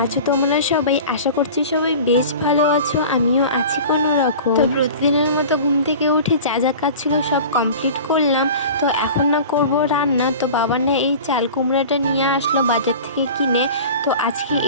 আছো তোমরা সবাই? আশা করছি সবাই বেশ ভালো আছো, আমিও আছি কোনো রকম। তো প্রতিদিনের মতো ঘুম থেকে উঠে যা যা কাজ ছিল সব কমপ্লিট করলাম। তো এখন না করব রান্না। তো বাবা না এই চাল কুমড়াটা নিয়ে আসলো বাজার থেকে কিনে, তো আজকে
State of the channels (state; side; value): inverted; both; correlation -0.38